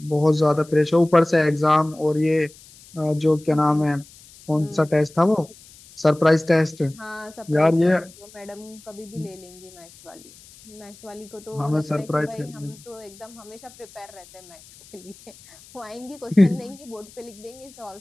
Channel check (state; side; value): noise; left; hiss, 23 dB below the sound